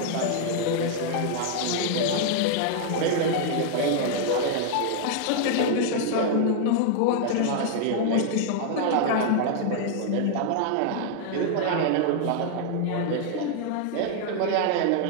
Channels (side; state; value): both; different; correlation 0.00